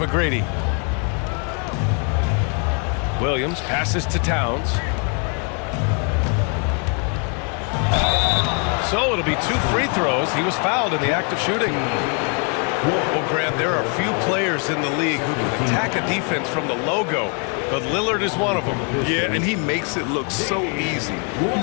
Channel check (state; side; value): quieter; right; 38.7 dB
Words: Williams passes to Towns. So it'll be 2 free throws. He was fouled in the act of shooting. Well, Grant, there are few players in the league who can attack a defense from the logo but Lillard is one of them. Yeah, and he makes it look so easy.